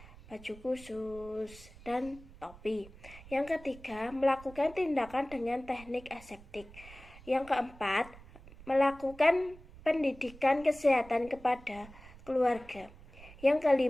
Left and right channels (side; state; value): right; noise; rumble, 20 dB below the sound